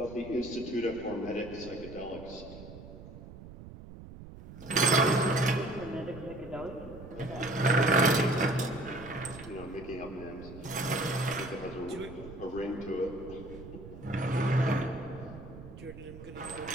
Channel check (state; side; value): noise; right; rumble, 15 dB below the sound